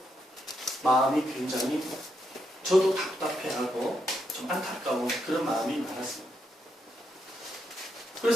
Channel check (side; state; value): both; normal; correlation 0.80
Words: 마음이 굉장히 저도 답답해하고 좀 안타까운 그런 마음이 많았습니다.